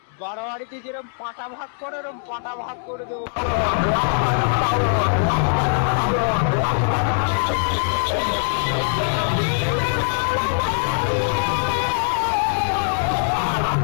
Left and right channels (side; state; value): right; silent; digital silence